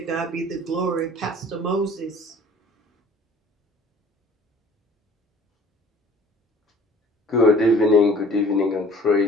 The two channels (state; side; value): normal; both; correlation 0.50